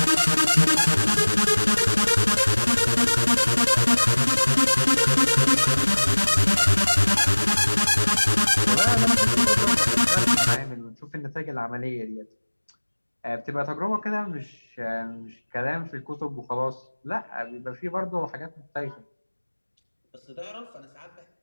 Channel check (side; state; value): both; inverted; correlation -1.00